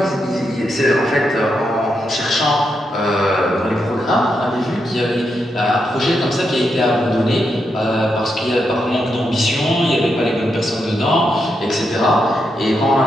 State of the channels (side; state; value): both; normal; correlation 0.83